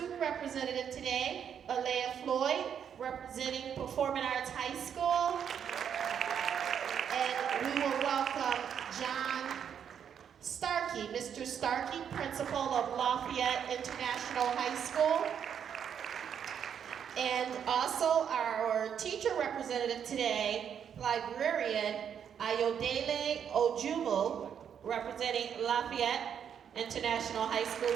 representative today, Alea Floyd, representing Performing Arts High School. And we will welcome John Starkey, Mr. Starkey, principal of Lafayette International High School. And also our teacher representative today, librarian Ayodele Ojumu, representing Lafayette International High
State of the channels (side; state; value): left; quieter; 8.2 dB